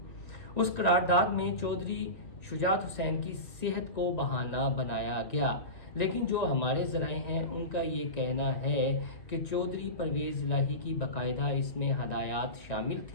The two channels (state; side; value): late; right; 1.9 ms